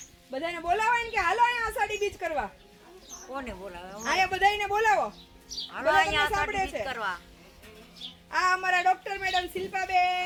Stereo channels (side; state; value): both; identical; correlation 1.00